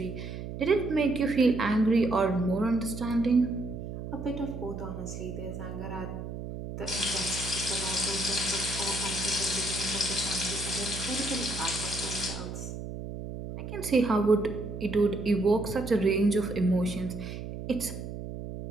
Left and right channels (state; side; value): noise; right; hum, 8 dB below the sound